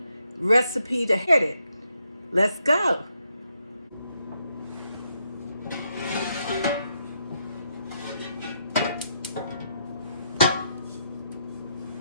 recipe to hit it. Let's go.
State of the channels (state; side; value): inverted; both; correlation -0.78